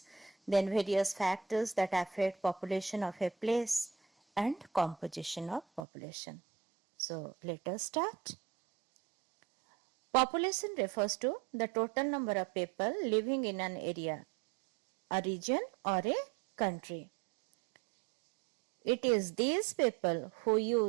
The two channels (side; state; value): left; drops out; at 5.9 s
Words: then various factors that affect population of a place and composition of population. So let us start. Population refers to the total number of people living in an area, a region or a country. It is these people who